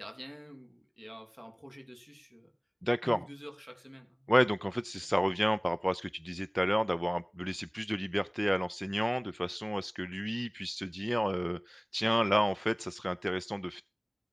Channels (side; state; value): both; identical; correlation 1.00